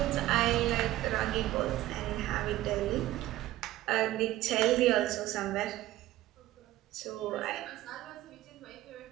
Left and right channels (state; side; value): quieter; left; 15.6 dB